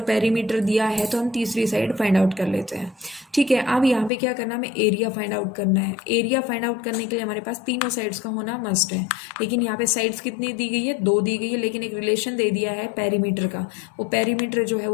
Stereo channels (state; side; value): drops out; right; at 4.1 s